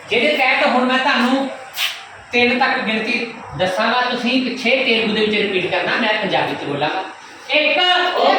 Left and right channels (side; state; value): both; identical; correlation 1.00